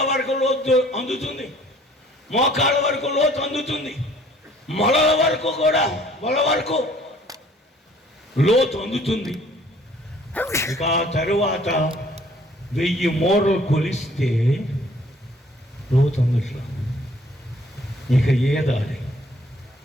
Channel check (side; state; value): both; normal; correlation 0.57